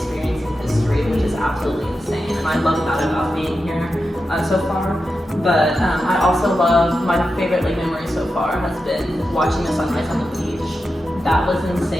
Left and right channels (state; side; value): normal; both; correlation 0.90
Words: history, which is absolutely insane. And I love that about being here so far. But I also love, my favorite memory so far has been watching the sunrise on the beach. That was